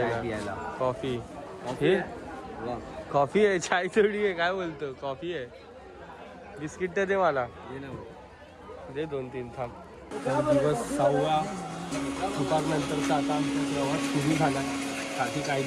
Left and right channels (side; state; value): both; identical; correlation 1.00